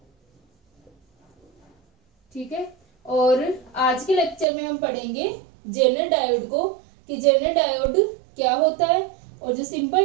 ठीक है, और आज के लेक्चर में हम पढ़ेंगे जेनर डायोड को कि जेनर डायोड क्या होता है और जो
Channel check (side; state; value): left; drops out; at 4.5 s